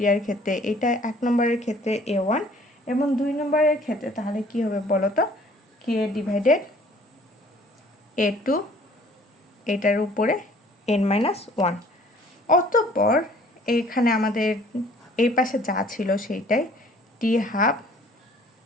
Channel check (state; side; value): normal; both; correlation 0.56